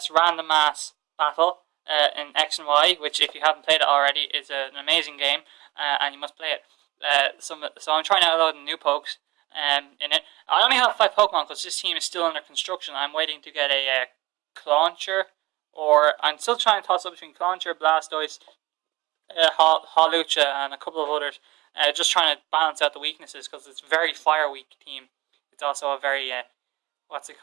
random mass battle in X and Y, which if you haven't played it already is an amazing game, and you must play it. So I'm trying to download new pokes in it. I only have 5 Pokemon because this team is still under construction. I'm waiting to get a Clauncher, or I'm still trying to toss up between Clauncher, Blastoise, Hawlucha, and a couple of others. Just trying to balance out the weaknesses because it's a very fire weak team. It's also a very what's it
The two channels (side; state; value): left; quieter; 20.2 dB